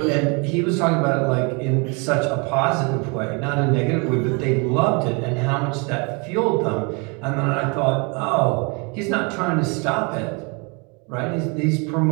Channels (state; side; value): quieter; left; 31.8 dB